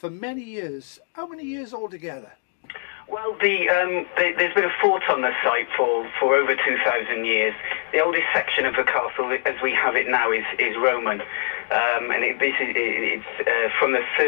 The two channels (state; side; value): silent; right; digital silence